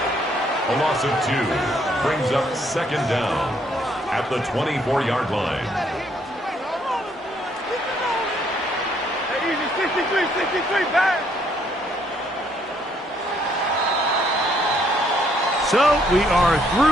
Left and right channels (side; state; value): both; normal; correlation 0.68